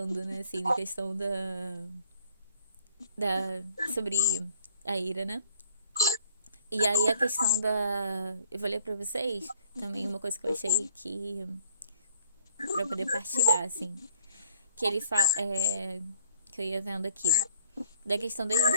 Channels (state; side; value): inverted; both; correlation -0.58